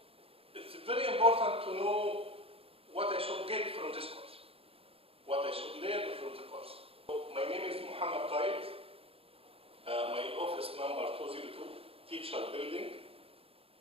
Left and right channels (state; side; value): late; left; 0.27 ms